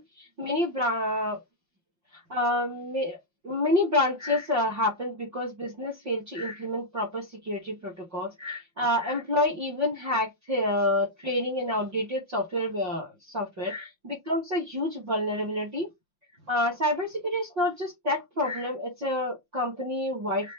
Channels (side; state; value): left; late; 5.7 ms